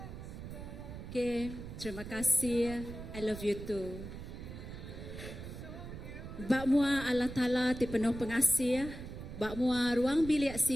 Okay, terima kasih. I love you too. Bak mua Allah Ta'ala ti penuh pengasih. Bak mua ruang bilik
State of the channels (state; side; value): noise; right; rumble, 10 dB below the sound